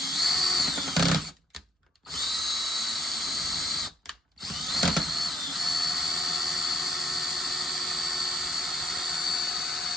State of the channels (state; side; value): normal; both; correlation 0.70